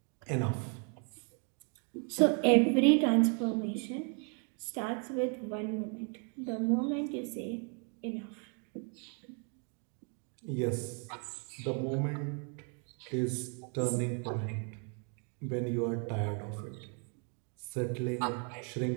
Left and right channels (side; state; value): left; quieter; 39.0 dB